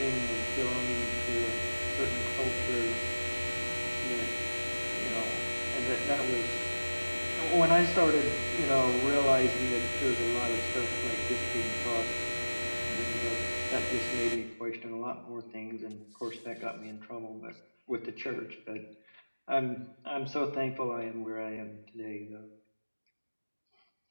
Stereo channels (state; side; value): inverted; both; correlation -1.00